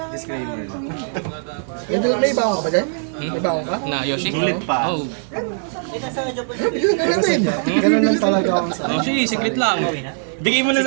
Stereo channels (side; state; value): left; silent; 65 dB below the other